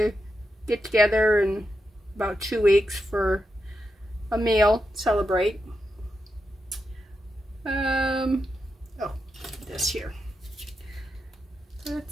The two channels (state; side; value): normal; both; correlation 0.87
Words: get together in about 2 weeks for a meal, celebrate. Oh, this here.